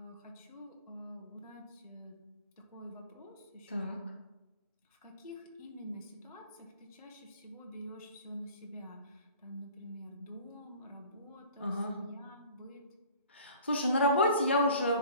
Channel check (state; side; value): inverted; both; correlation -0.47